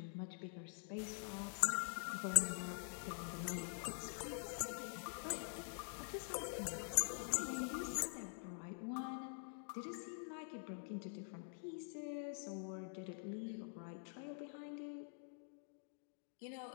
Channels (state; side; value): silent; right; digital silence